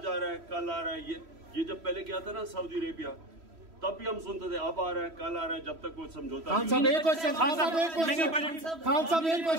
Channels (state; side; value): late; left; 3.1 ms